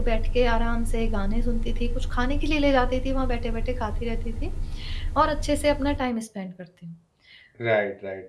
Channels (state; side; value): identical; both; correlation 1.00